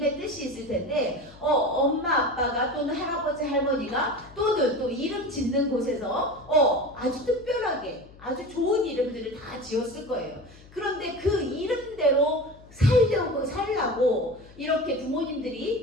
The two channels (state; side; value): noise; left; hum, 23 dB below the sound